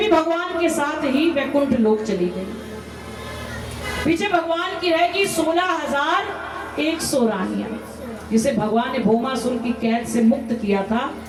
भगवान के साथ ही वैकुंठ लोक चली गई। पीछे भगवान की रहेगी 16,100 रानियां, जिसे भगवान ने भौमासुर की कैद से मुक्त किया था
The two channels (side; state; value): both; identical; correlation 1.00